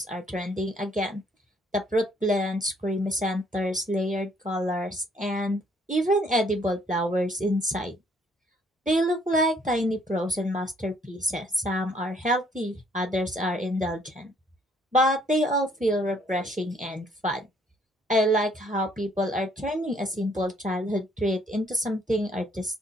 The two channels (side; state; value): both; normal; correlation 0.64